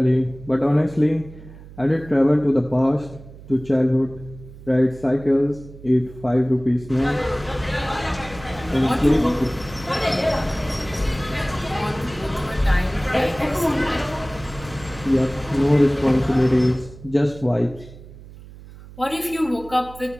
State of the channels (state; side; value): noise; right; hum, 18 dB below the sound